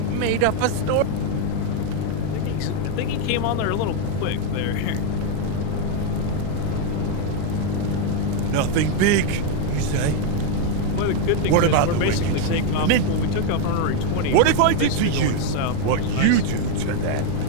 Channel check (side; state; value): both; different; correlation 0.02